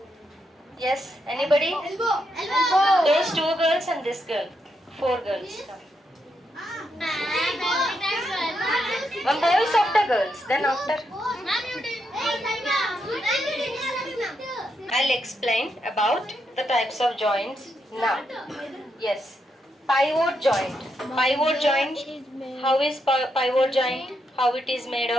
Yes, anybody? Elbow. Those two girls and this girl. 4 girls. One boy is after girls. Then after, I'll explain about the types of joints now. Yes. Pivot joint. Pivot joint. How is pivot joint? How it is made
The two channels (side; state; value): both; normal; correlation 0.81